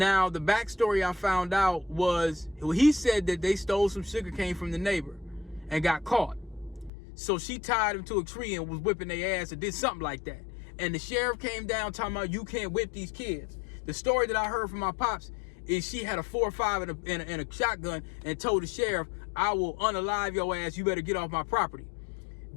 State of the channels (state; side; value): drops out; right; at 6.9 s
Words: the backstory I found out was, he said that they stole some sugar cane from the neighbor and got caught. So she tied him to a tree and was whipping their ass or did something like that. And the sheriff came down talking about, you can't whip these kids. The story that I heard from my pops is she had a 4.5 and a shotgun and told the sheriff, I will unalive your ass. You better get off my property.